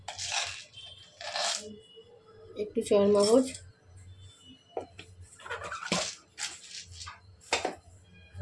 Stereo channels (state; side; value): identical; both; correlation 1.00